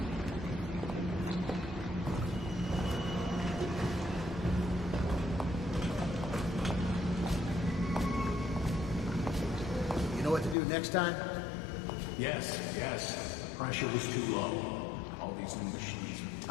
You know what to do next time? Yes. Pressure was too low. All these new machines are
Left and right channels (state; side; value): drops out; right; at 10.6 s